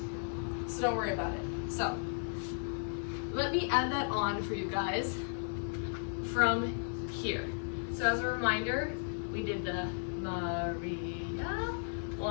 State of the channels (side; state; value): right; silent; 54 dB below the other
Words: so don't worry about it. So, let me add that on for you guys from here. So as a reminder, we did the Maria,